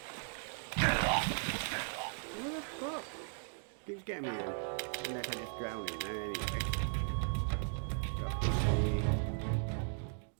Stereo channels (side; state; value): left; silent; 53 dB below the other